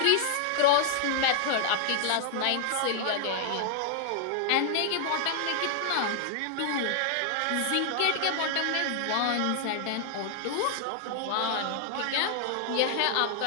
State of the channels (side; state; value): both; different; correlation -0.01